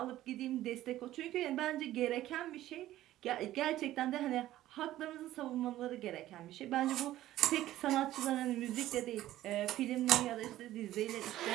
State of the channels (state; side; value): quieter; left; 14.4 dB